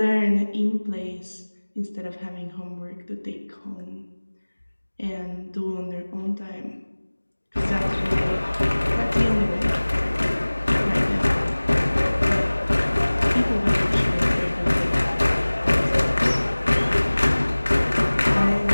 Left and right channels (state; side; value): inverted; both; correlation -1.00